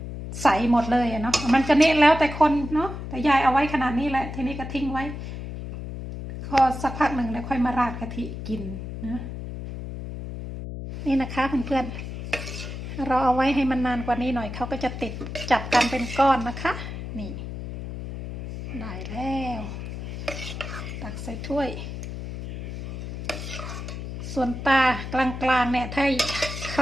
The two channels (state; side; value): noise; left; hum, 8 dB below the sound